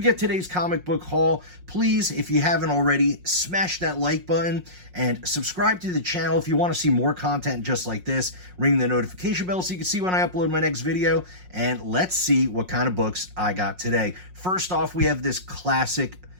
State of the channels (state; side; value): late; left; 5.5 ms